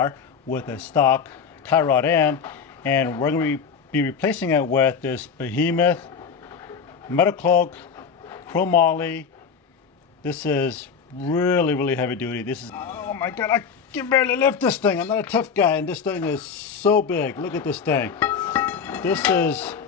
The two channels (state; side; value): quieter; right; 6.3 dB